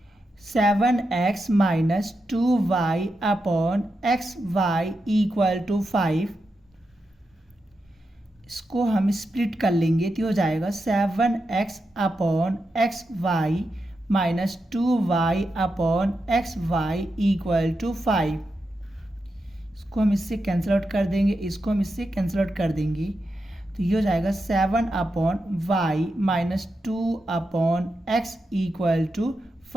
7x minus 2y upon xy equal to 5, इसको हम स्प्लिट कर लेंगे तो हो जाएगा 7x upon xy minus 2y upon xy equal to 5। इसको हम इससे कैंसिल आउट कर देंगे, इसको हम इससे कैंसिल आउट कर देंगे, तो ये हो जाएगा 7 upon y minus 2 upon x equal to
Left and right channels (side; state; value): both; normal; correlation 0.87